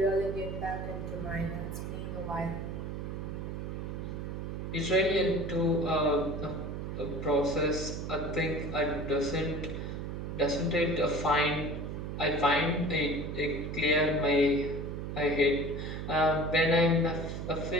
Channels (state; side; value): noise; right; hum, 5 dB below the sound